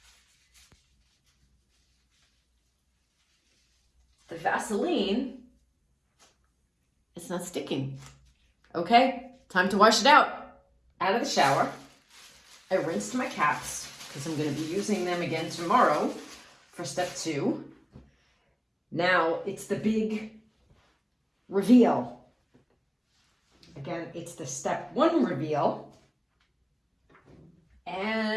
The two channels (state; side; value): identical; both; correlation 1.00